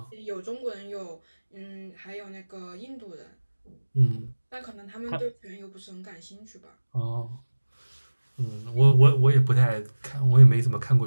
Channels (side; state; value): both; inverted; correlation -1.00